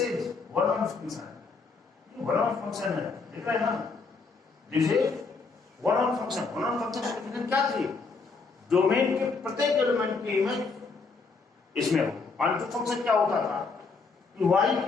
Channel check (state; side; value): quieter; right; 4.4 dB